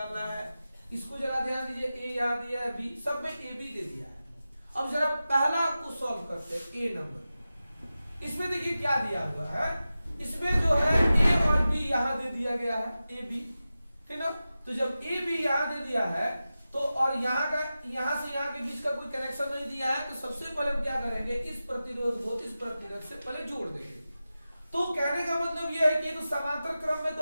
है। इसको जरा ध्यान दीजिए, ए यहाँ दिया है, बी सब में ए बी दे दिया है। अब जरा पहला आपको सॉल्व करते हैं, ए नंबर। इसमें देखिए क्या दिया हुआ है, इसमें जो है ए और बी यहाँ दे दिया गया है, ए बी, ठीक ना। तो जब ए बी यहाँ दे दिया है तो और यहाँ से यहाँ के बीच का कोई कनेक्शन नहीं दिया है, तो सबसे पहले हम क्या करेंगे, इस प्रतिरोध को इस प्रतिरोध से पहले जोड़ देंगे। तो कहने का मतलब ये है कि तो समांतर क्रम में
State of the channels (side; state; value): both; inverted; correlation -0.94